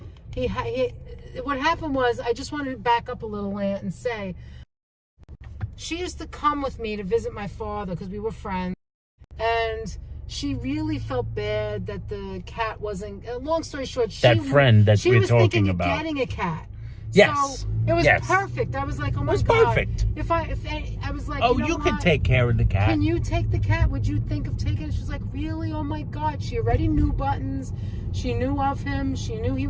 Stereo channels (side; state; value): both; identical; correlation 1.00